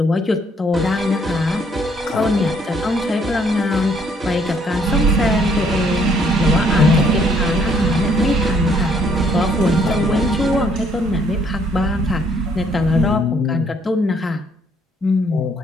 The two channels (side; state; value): both; normal; correlation 0.66